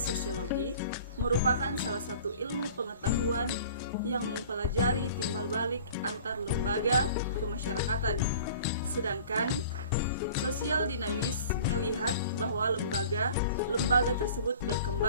sosiologi merupakan salah satu ilmu pengetahuan yang mempelajari timbal balik antar lembaga kemasyarakatan. Sedangkan sosial dinamis melihat bahwa lembaga tersebut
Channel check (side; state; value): both; inverted; correlation -0.45